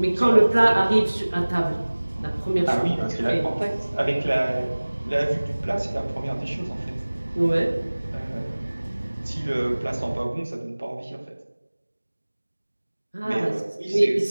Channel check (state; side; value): inverted; both; correlation -1.00